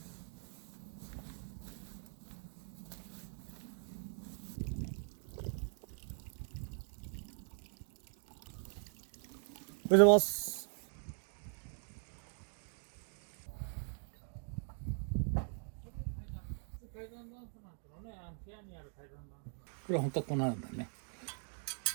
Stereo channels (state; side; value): silent; left; 50 dB below the other